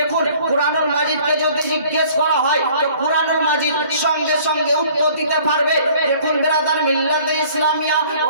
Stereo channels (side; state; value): both; inverted; correlation -0.54